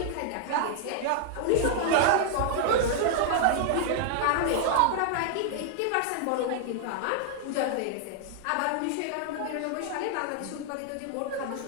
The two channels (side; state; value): both; different; correlation 0.00